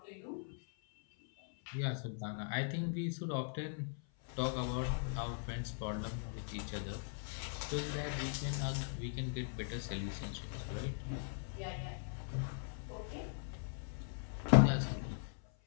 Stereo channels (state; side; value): silent; right; 51 dB below the other